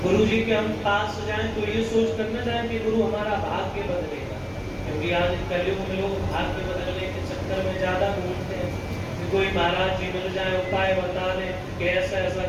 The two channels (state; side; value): identical; both; correlation 1.00